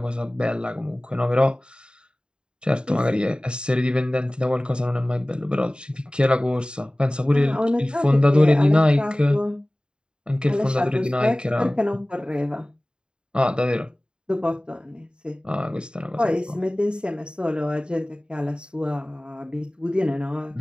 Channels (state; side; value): late; left; 0.050 ms